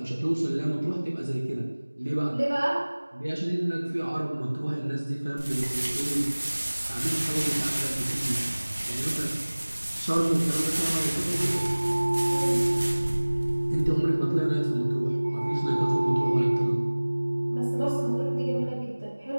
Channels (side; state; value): both; inverted; correlation -1.00